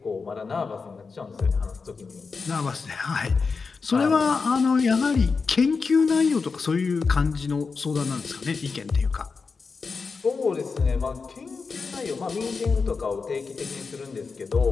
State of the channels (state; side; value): quieter; right; 4.8 dB